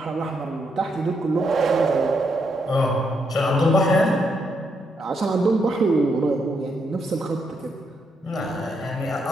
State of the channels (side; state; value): both; normal; correlation 0.78